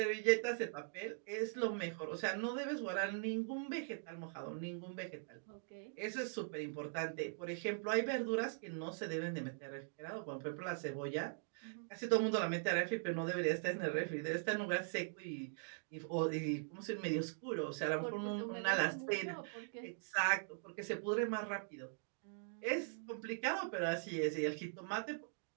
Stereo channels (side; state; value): left; silent; digital silence